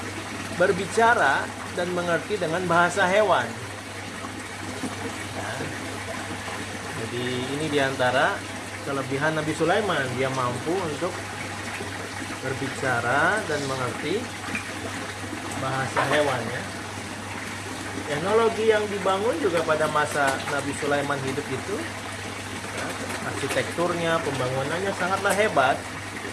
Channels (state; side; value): identical; both; correlation 1.00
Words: berbicara dan mengerti dengan bahasa hewan. Ya. Jadi ini diantara kelebihan Nabi Sulaiman, dia mampu untuk berbicara dan mengerti bahasa hewan, ya. Teknologi yang dibangun juga pada masa Nabi Sulaiman hidup itu, ya, arsitekturnya, pembangunannya sangatlah hebat,